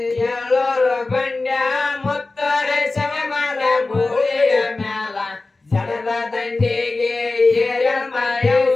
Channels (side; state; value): right; quieter; 3.4 dB